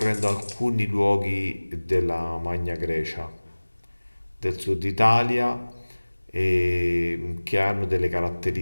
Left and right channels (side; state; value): both; inverted; correlation -1.00